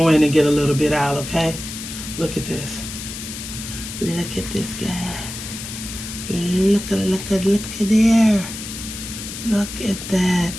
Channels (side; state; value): left; noise; hiss, 9 dB below the sound